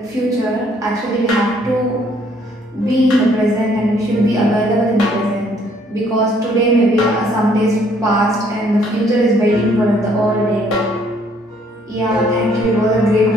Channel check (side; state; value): both; normal; correlation 0.64